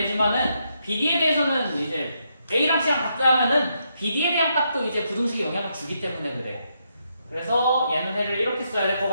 BD에 대해서는 이제 A랑 C랑 같다 하면은 BD에 대한 값도 이제 부등식에 영향을 주기 때문에 그래. 그래서 얘는 해를 이렇게 써야 될 것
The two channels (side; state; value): both; inverted; correlation -0.79